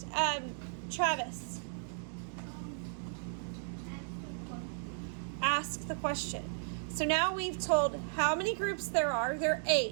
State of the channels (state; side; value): silent; left; digital silence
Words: Travis. Ask the question. So now we've told how many groups there are. There are